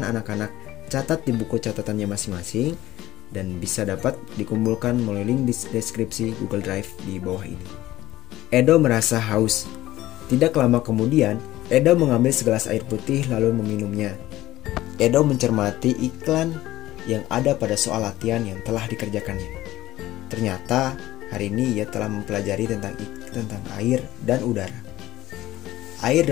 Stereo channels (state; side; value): quieter; right; 15.7 dB